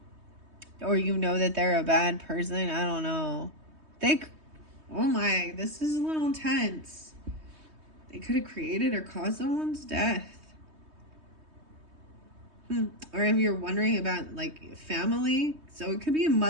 or you know that they're a bad person. I don't know. Oh my, this is a little intense. They could have created or caused someone's death. Or if you're wondering about like family, so it could be a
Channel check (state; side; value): late; left; 3.2 ms